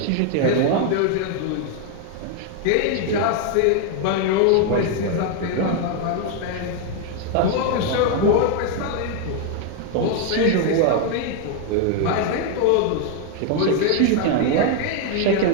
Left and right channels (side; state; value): both; different; correlation 0.01